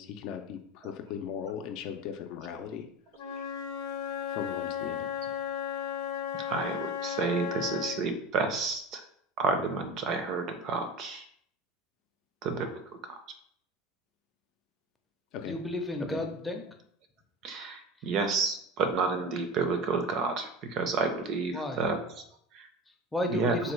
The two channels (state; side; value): normal; both; correlation 0.30